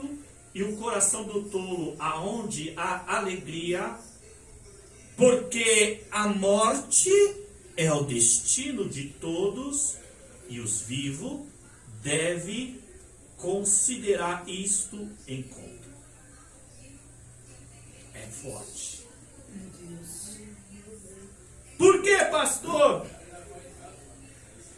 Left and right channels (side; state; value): both; identical; correlation 1.00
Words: e o coração do tolo aonde há alegria, porque a morte é o destino de todos e os vivos devem considerar isto em conta. É forte. Por que, pastor?